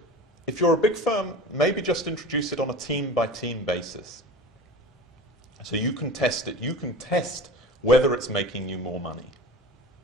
If you're a big firm, maybe just introduce it on a team-by-team basis. So you can test it. You can test whether it's making you more money.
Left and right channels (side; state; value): both; normal; correlation 0.35